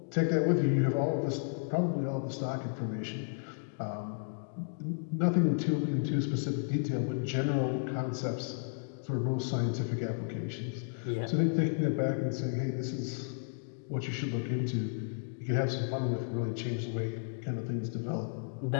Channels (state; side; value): silent; right; digital silence